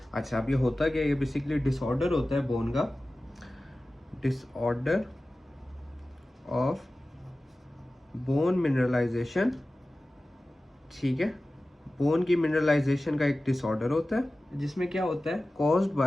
अच्छा, अब ये होता क्या है? ये बेसिकली डिसऑर्डर होता है बोन का, डिसऑर्डर ऑफ बोन मिनरलाइजेशन, ठीक है। बोन की मिनरलाइजेशन का एक डिसऑर्डर होता है जिसमें क्या होता है, कॉज्ड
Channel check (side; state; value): both; normal; correlation 0.96